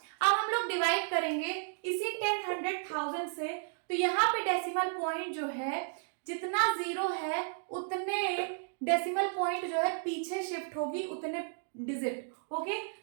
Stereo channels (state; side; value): silent; left; digital silence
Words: अब हम लोग डिवाइड करेंगे इसी 10, 100, 1000 से, तो यहाँ पे डेसिमल पॉइंट जो है जितना 0 है उतने डेसिमल पॉइंट जो है पीछे शिफ्ट होगी, उतने डिजिट। ओके,